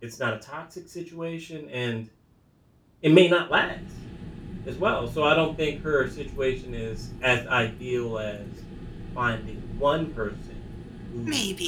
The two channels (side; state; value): both; identical; correlation 1.00